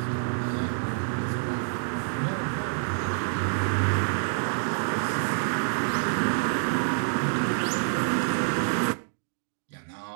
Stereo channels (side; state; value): left; silent; digital silence